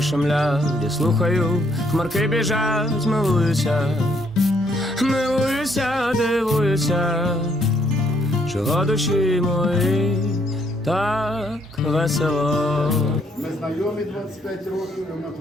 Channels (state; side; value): normal; both; correlation 0.70